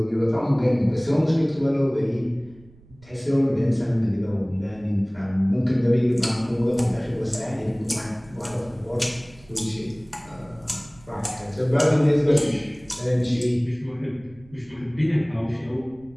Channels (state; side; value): noise; right; rumble, 25 dB below the sound